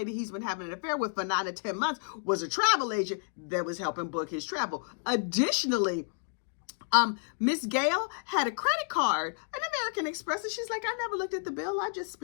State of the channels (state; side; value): silent; right; digital silence